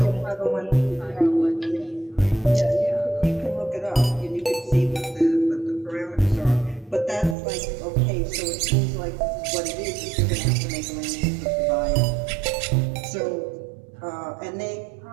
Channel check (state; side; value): drops out; left; at 7.4 s